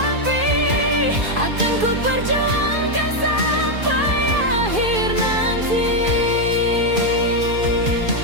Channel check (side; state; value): left; late; 2.5 ms